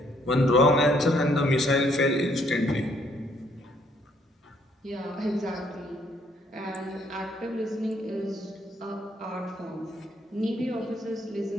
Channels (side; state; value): both; normal; correlation 0.68